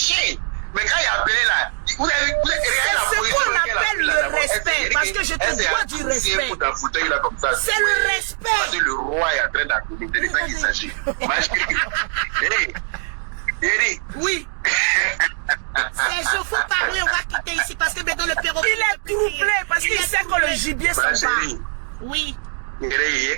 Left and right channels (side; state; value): left; silent; 60 dB below the other